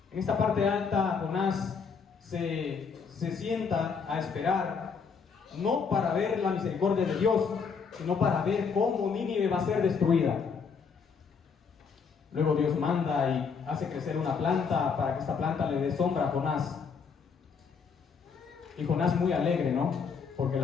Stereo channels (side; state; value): right; quieter; 5.7 dB